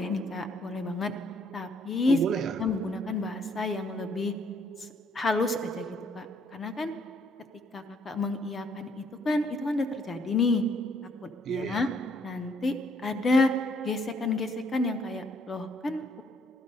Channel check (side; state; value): both; normal; correlation 0.67